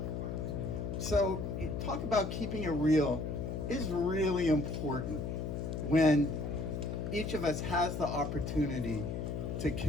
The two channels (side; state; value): left; noise; hum, 3 dB below the sound